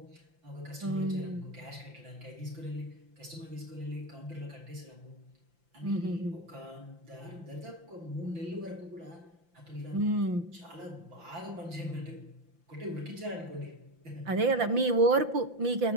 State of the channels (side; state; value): left; late; 5.8 ms